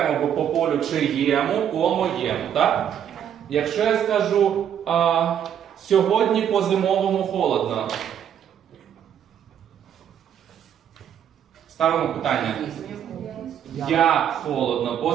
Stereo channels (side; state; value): left; quieter; 9.3 dB